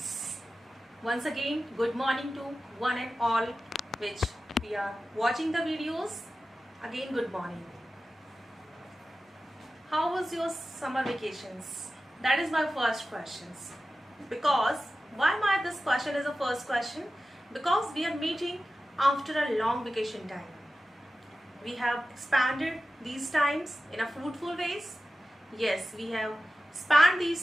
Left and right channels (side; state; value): both; normal; correlation 0.94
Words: Once again, good morning to one and all which we are watching the videos. Again, good morning. How was your summer vacations? That is my first question. Because why my this question is the first question? Because we are meeting after a long vacation time. We have expanded these times in a fruitful ways. Yes, we have spanned